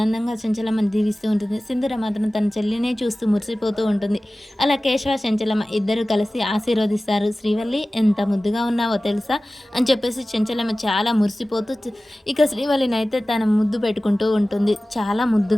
చెంచలమ్మని దీవిస్తూ ఉంటుంది. సింధూర మాత్రం తన చెల్లినే చూస్తూ మురిసిపోతూ ఉంటుంది. అలా కేశవ, చెంచలమ్మ ఇద్దరు కలిసి ఆశీర్వదిస్తారు. శ్రీవల్లి ఎంత ముద్దుగా ఉన్నావో తెలుసా అని చెప్పేసి చెంచలమ్మ చాలా మురిసిపోతూ ఇక శ్రీవల్లిని అయితే తన ముద్దు పెట్టుకుంటూ ఉంటుంది. చాలా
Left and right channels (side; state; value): both; normal; correlation 0.97